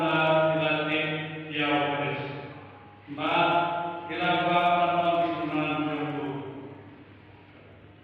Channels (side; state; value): both; identical; correlation 1.00